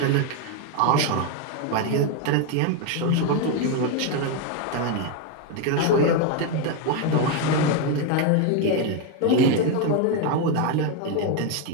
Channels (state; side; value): different; both; correlation 0.02